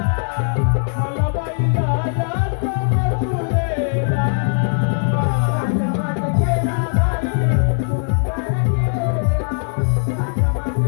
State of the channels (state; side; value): silent; right; digital silence